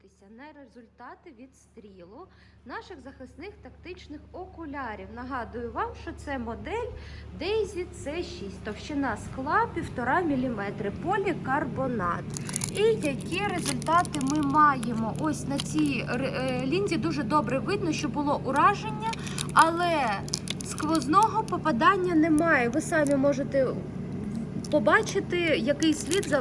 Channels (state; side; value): identical; both; correlation 1.00